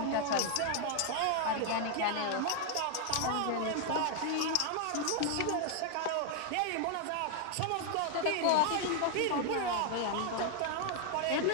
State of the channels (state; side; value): different; both; correlation 0.00